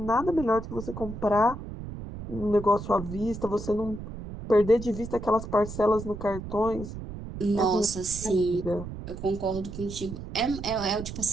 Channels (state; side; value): noise; right; rumble, 10 dB below the sound